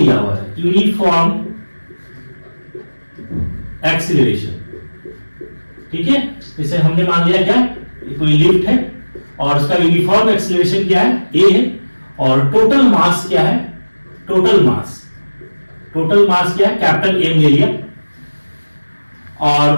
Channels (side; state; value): both; inverted; correlation -1.00